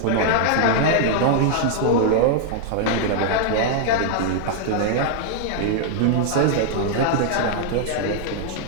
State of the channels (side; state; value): both; different; correlation -0.01